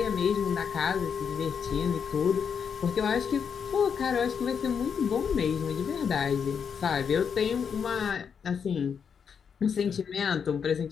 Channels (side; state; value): right; quieter; 6.9 dB